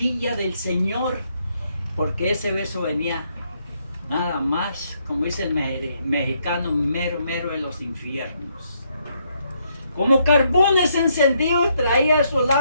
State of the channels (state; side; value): inverted; both; correlation -0.74